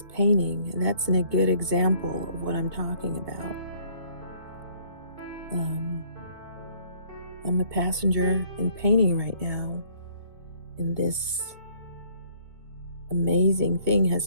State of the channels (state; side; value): late; left; 2.2 ms